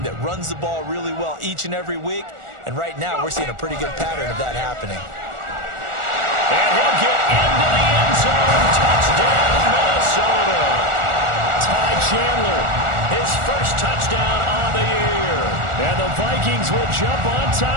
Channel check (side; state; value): left; late; 1.4 ms